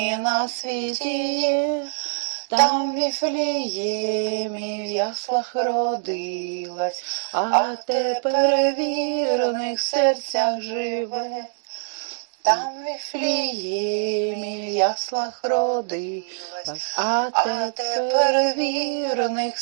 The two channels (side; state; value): left; silent; digital silence